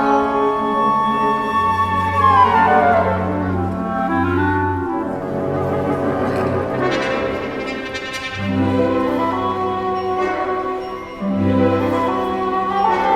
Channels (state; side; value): noise; left; rumble, 25 dB below the sound